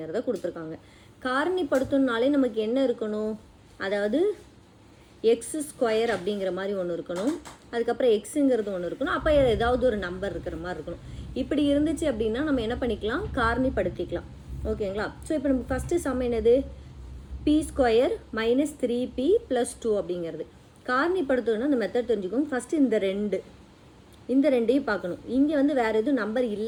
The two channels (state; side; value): identical; both; correlation 1.00